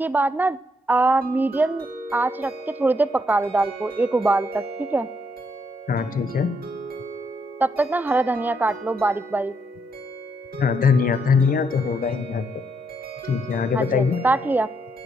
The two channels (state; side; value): normal; both; correlation 0.75